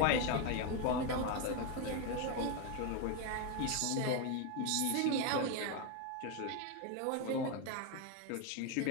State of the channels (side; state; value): both; different; correlation 0.02